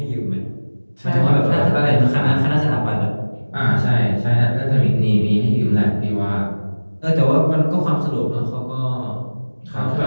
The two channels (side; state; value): both; inverted; correlation -1.00